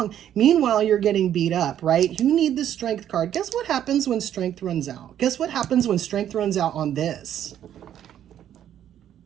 Meanwhile, you're getting beat up, right? You need the strength card. Guess what happens when strength runs out? Guess what happens when strength runs out on this?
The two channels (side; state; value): left; quieter; 10.6 dB